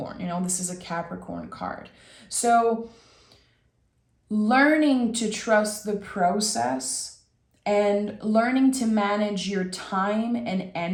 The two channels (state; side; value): identical; both; correlation 1.00